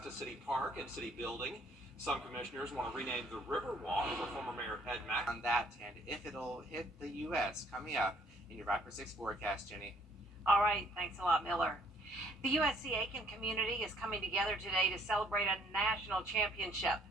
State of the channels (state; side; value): normal; both; correlation 0.63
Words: City Park and City Building. Some commissioners want to rename the Riverwalk for former Mayor Ed Mack. On that, and if it'll hit the U.S. coming up in your Viper 6 forecast, Jenny. All right, thanks a lot, Miller. The USC Aiken community is coming together today to celebrate a national championship.